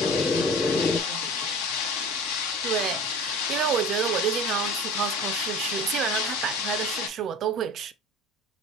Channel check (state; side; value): normal; both; correlation 0.38